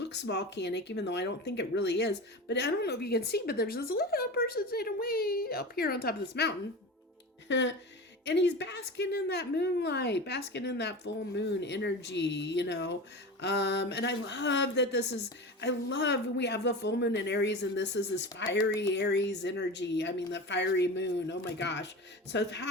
volcanic, even though I don't think it really is. But I don't know if you can see, but there's this little person sitting way up here on top of this mountain. And he's basking in that moonlight, basking in that full moon energy, and I love that we have the full moon in Aries, and this is this fiery Aries energy. I mean, the fiery moon, oh my gosh. So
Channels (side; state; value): both; normal; correlation 0.29